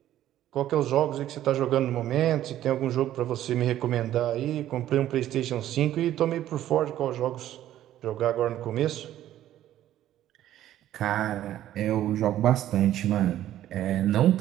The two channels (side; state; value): left; quieter; 12.6 dB